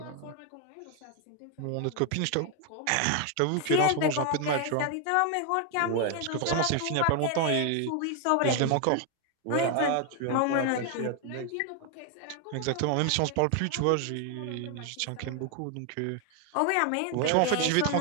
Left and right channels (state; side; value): different; both; correlation 0.01